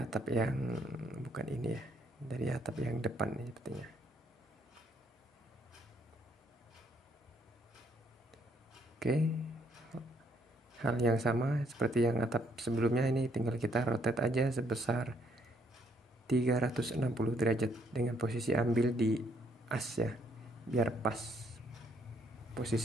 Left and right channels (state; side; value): normal; both; correlation 0.69